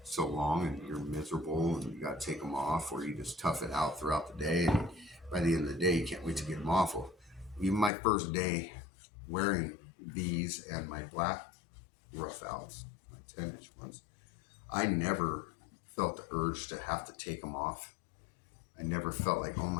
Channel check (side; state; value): right; drops out; at 7.9 s